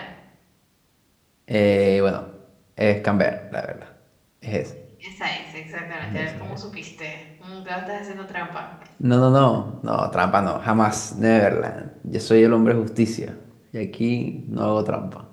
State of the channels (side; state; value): both; identical; correlation 1.00